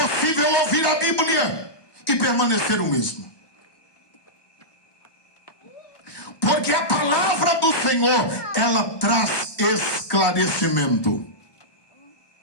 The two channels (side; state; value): right; late; 1.2 ms